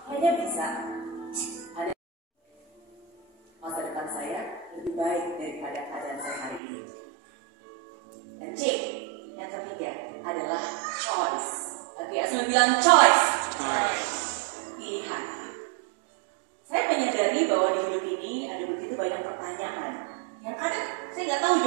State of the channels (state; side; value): drops out; left; at 6.6 s